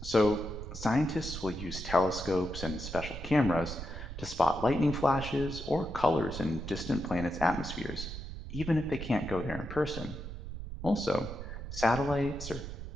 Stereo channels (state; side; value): noise; right; rumble, 8 dB below the sound